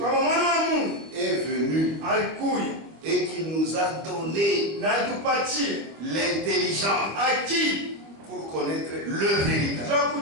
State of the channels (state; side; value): late; left; 24 ms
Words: est venu et qu'il nous a donné l'intelligence pour connaître le véritable.